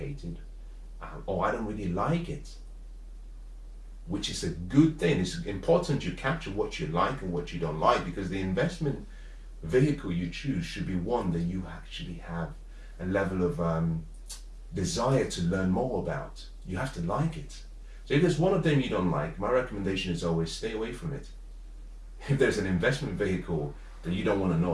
or I don't really like it, which is a good thing. It's important you capture what you like and what you don't like, because the investment vehicle you choose should be one that you actually have a level of desire to learn more about. You have to like it. So if there's one of them you don't like, my recommendation is always stay away from it. If there's an investment vehicle that you don't want to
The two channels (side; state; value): both; identical; correlation 1.00